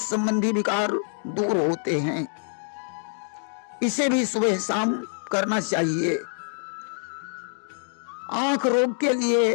संबंधी विकार दूर होते हैं। इसे भी सुबह शाम करना चाहिए। आंख रोग के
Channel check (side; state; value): right; silent; 61 dB below the other